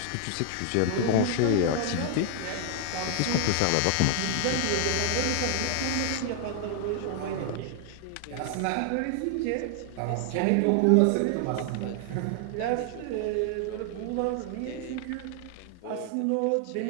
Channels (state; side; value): different; both; correlation 0.00